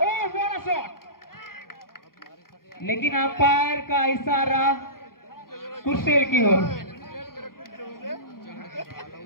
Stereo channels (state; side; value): late; right; 0.92 ms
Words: व्हाट अ शॉट, लेकिन अंपायर का इशारा कुर्सेल की ओर।